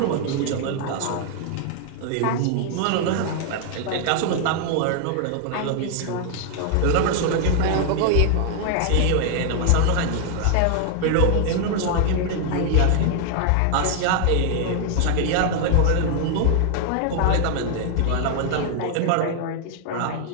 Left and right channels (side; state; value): both; different; correlation 0.00